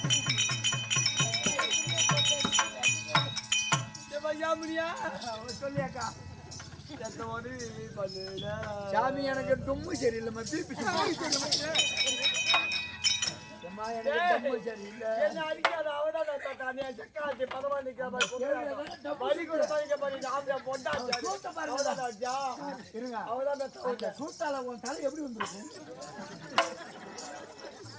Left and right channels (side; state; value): both; identical; correlation 1.00